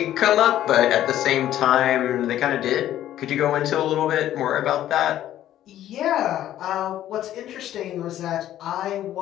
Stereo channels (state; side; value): quieter; right; 12.4 dB